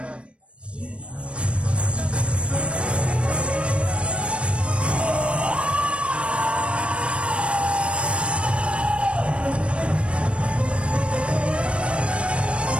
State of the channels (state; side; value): late; left; 0.060 ms